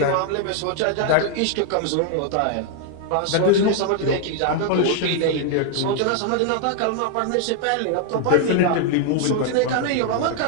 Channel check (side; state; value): both; different; correlation 0.00